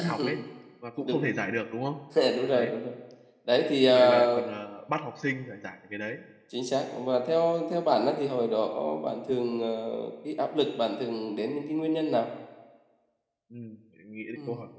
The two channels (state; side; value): identical; both; correlation 1.00